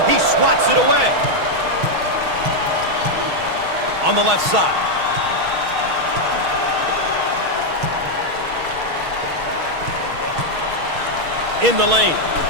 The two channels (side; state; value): left; late; 6.3 ms